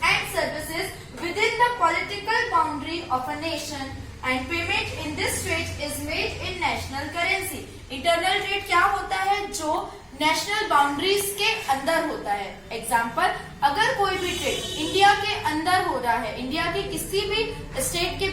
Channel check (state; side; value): identical; both; correlation 1.00